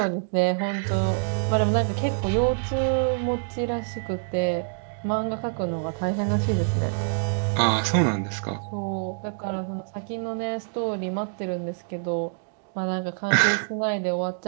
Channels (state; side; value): silent; left; digital silence